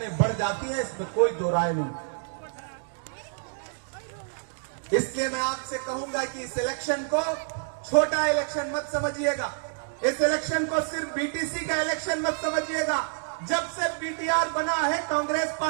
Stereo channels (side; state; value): left; silent; digital silence